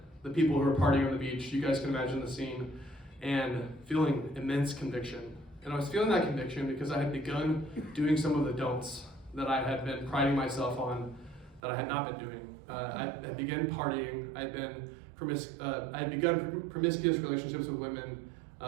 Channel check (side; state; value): left; drops out; at 11.6 s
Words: people who were partying on the beach. You guys can imagine the scene. And feeling immense conviction. And I was feeling that conviction because I had begun doing some of the don'ts that I had been priding myself on that I had not been doing. I had begun partying. I had begun promiscuous relationships with women